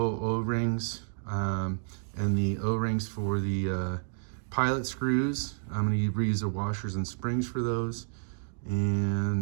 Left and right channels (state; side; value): silent; left; digital silence